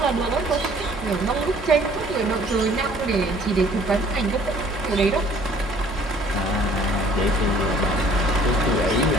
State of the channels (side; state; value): both; normal; correlation 0.55